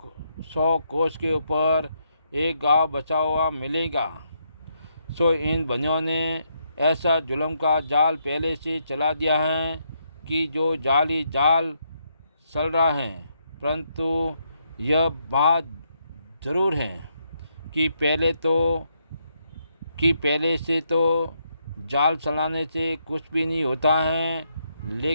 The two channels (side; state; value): both; inverted; correlation -0.77